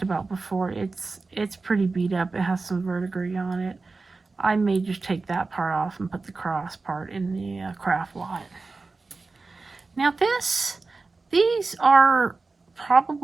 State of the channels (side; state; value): left; quieter; 3.8 dB